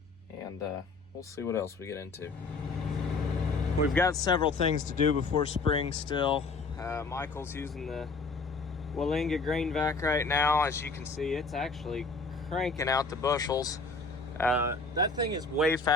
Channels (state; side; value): quieter; right; 3.9 dB